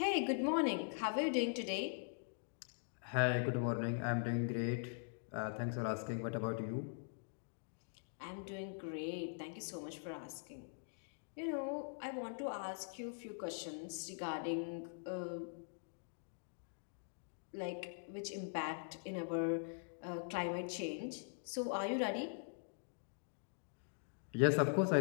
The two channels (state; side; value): silent; right; digital silence